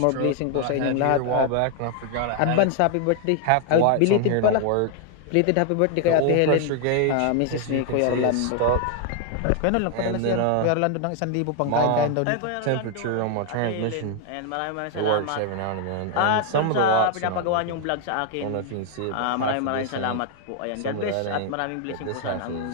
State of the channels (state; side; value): different; both; correlation 0.00